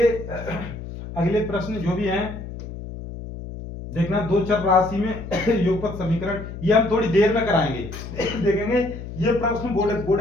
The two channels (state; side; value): noise; left; hum, 10 dB below the sound